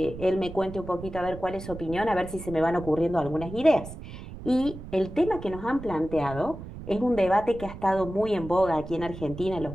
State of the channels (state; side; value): noise; right; rumble, 12 dB below the sound